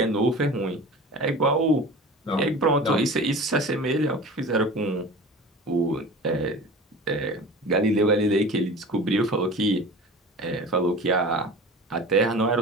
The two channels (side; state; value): both; normal; correlation 0.37